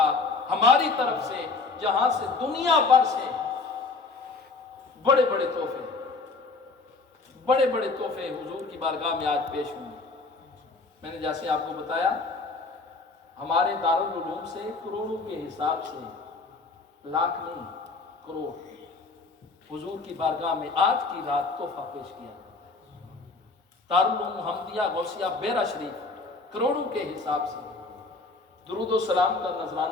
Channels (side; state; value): right; quieter; 3.9 dB